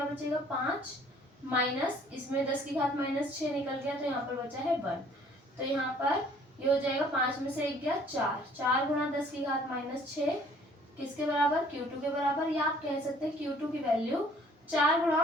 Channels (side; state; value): both; normal; correlation 0.56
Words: बचेगा 5 माइनस, इसमें 10 की घात माइनस 6 निकल गया तो यहाँ पर बचा है 1। तो यहाँ पर ये हो जाएगा 5 में से 1 गया 4, 4 गुणा 10 की घात माइनस 6 किसके बराबर, Q2 के बराबर, या आप कह सकते हैं Q2 की वैल्यू 4